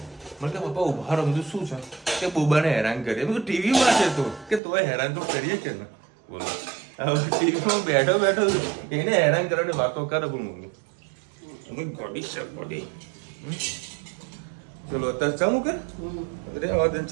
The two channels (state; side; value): drops out; left; at 4.6 s